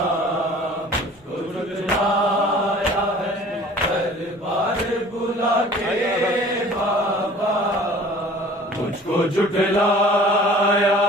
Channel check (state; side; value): normal; both; correlation 0.47